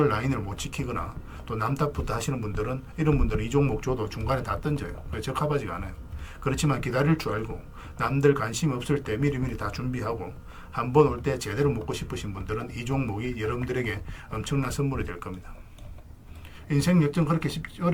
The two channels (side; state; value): both; identical; correlation 1.00